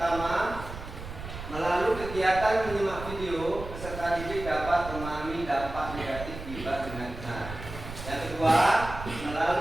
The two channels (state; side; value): noise; right; rumble, 10 dB below the sound